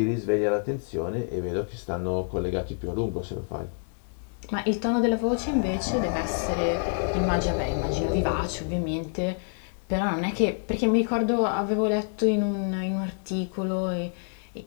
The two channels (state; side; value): silent; right; 56 dB below the other